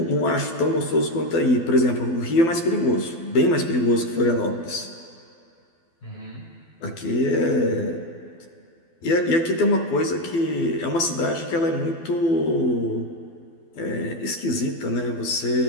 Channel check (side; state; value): right; late; 12 ms